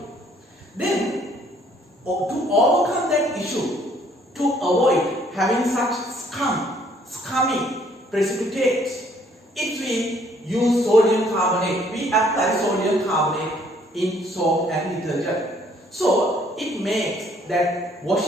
Then to overcome that issue, to avoid having such scummy precipitates, if we use sodium carbonate, we apply sodium carbonate in soap and detergent. So it makes that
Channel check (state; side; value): normal; both; correlation 0.63